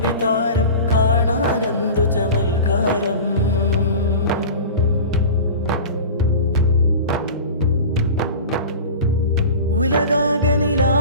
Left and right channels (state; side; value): inverted; both; correlation -0.34